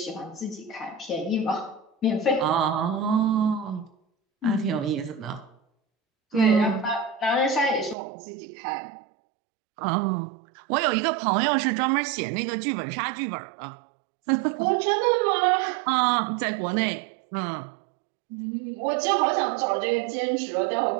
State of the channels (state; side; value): drops out; left; at 8.0 s